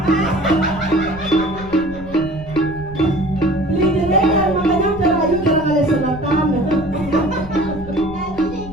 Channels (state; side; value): noise; left; rumble, 14 dB below the sound